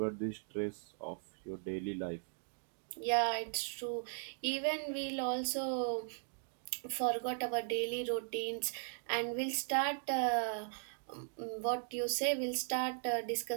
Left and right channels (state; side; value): silent; left; digital silence